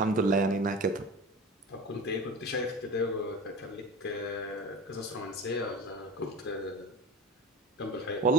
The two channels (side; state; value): both; normal; correlation 0.33